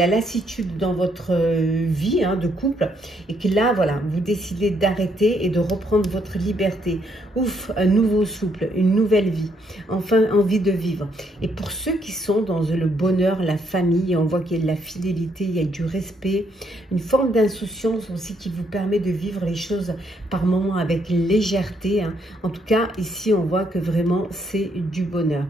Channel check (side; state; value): both; normal; correlation 0.73